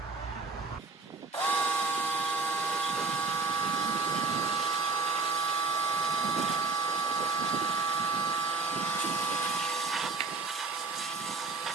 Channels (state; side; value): quieter; left; 4.0 dB